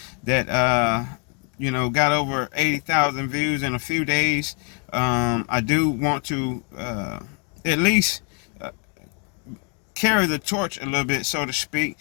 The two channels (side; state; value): right; quieter; 38.6 dB